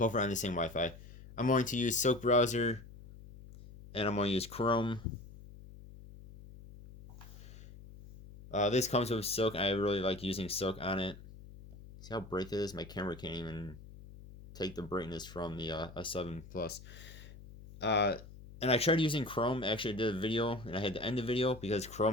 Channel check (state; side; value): noise; left; hum, 17 dB below the sound